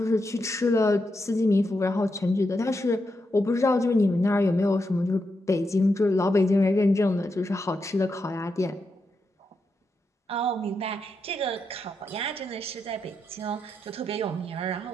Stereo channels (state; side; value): normal; both; correlation 0.85